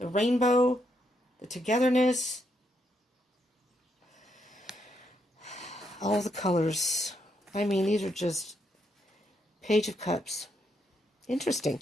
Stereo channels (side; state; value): both; normal; correlation 0.77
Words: rainbow, the togetherness, all the colors. I mean, these are just Page of Cups. Interesting.